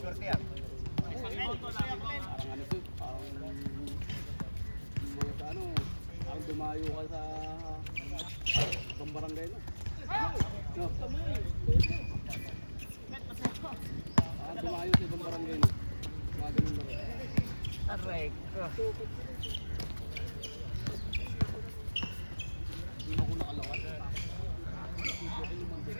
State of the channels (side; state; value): both; inverted; correlation -1.00